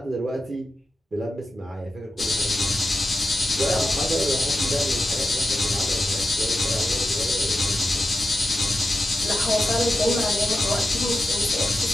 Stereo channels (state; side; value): normal; both; correlation 0.91